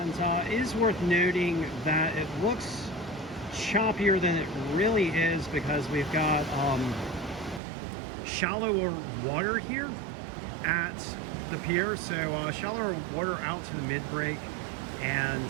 it is worth noting that it looks choppier than it really is because we've got shallower water here at the pier. So shallower water out to the mid-break,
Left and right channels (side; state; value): left; drops out; at 7.6 s